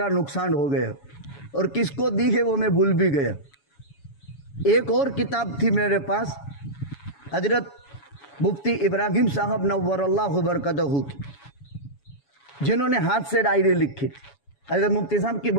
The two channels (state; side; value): late; right; 7.1 ms